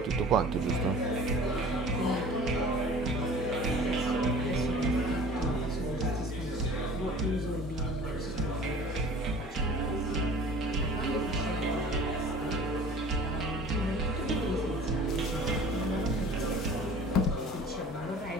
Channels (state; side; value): normal; both; correlation 0.44